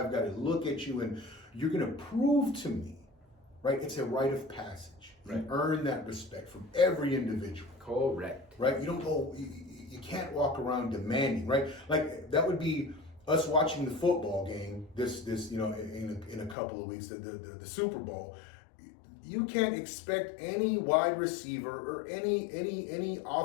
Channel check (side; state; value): right; drops out; at 16.6 s